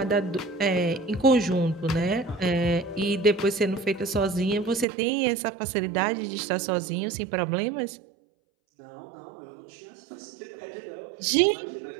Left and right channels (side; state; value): left; drops out; at 4.9 s